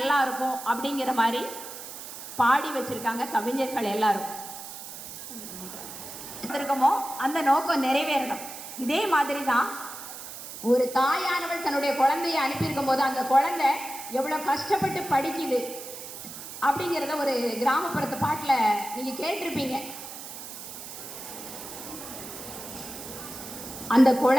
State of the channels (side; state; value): right; noise; hiss, 11 dB below the sound